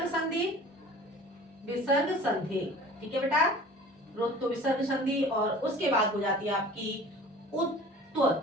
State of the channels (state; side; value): normal; both; correlation 0.44